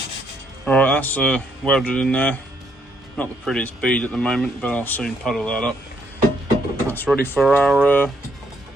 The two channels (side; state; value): both; normal; correlation 0.72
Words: Alright, that's welded in there. Not the prettiest bead at the moment, but I'll soon puddle that up. That's ready for our